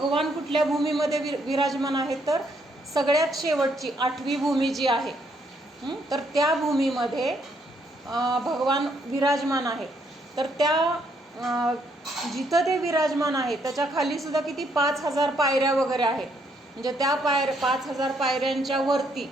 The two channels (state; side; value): normal; both; correlation 0.72